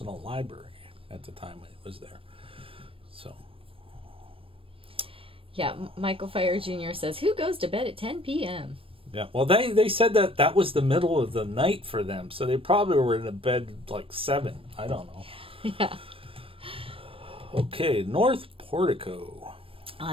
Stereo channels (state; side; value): late; left; 0.26 ms